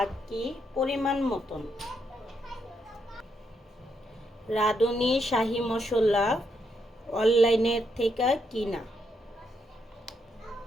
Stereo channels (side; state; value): both; normal; correlation 0.78